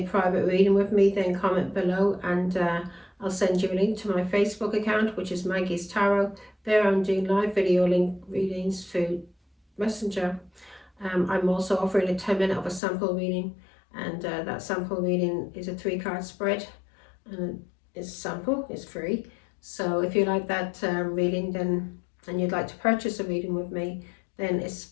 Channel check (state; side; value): drops out; right; at 12.8 s